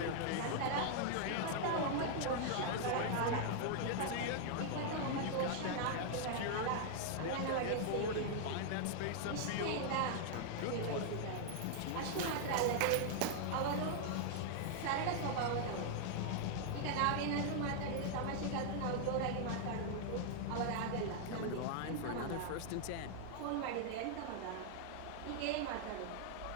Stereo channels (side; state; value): both; different; correlation 0.00